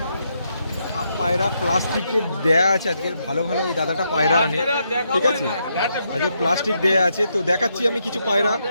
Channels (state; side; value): inverted; both; correlation -0.79